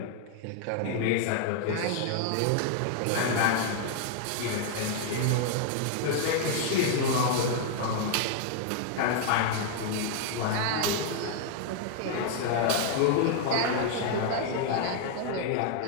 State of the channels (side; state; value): both; different; correlation 0.00